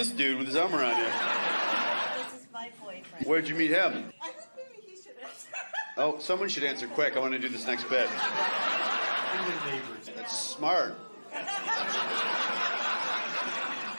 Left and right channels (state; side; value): inverted; both; correlation -1.00